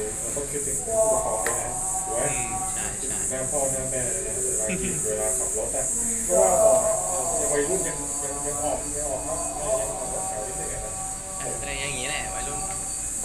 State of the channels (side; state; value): both; identical; correlation 1.00